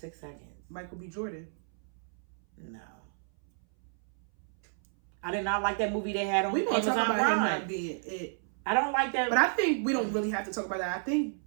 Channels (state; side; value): silent; left; 57 dB below the other